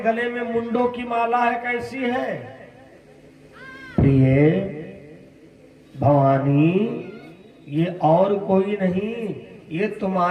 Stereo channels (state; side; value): identical; both; correlation 1.00